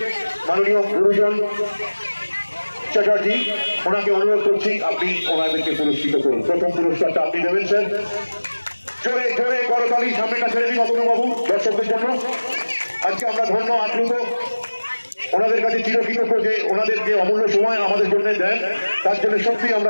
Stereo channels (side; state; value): both; inverted; correlation -1.00